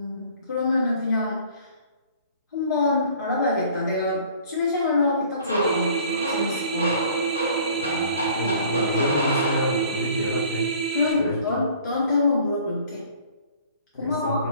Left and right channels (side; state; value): both; inverted; correlation -0.52